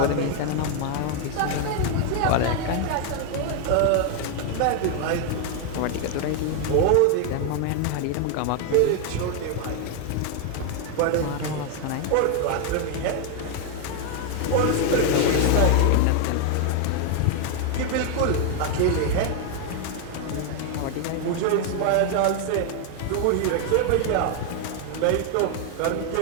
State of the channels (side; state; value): both; different; correlation 0.00